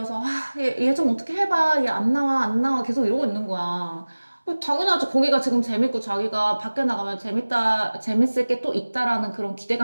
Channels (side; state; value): both; inverted; correlation -1.00